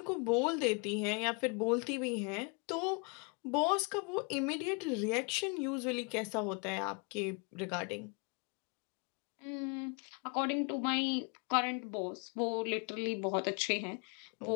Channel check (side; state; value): right; quieter; 34.1 dB